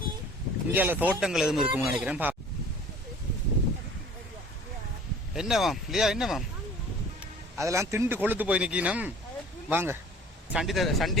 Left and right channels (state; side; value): normal; both; correlation 0.48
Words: இந்தியால தோட்டங்கள் எதுவும் இருக்கும்னு நினைக்கிறேன். என்னவாம் இல்லையா? என்னவாம் அதெல்லாம் திண்டு கொளுத்து போய் நிக்கணும். வாங்க,